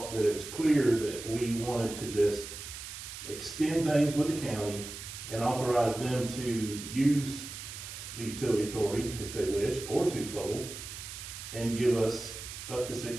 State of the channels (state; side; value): noise; right; hiss, 10 dB below the sound